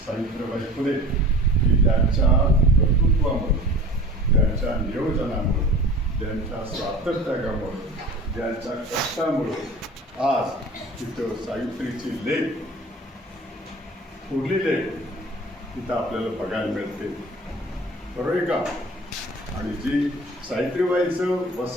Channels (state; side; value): normal; both; correlation 0.41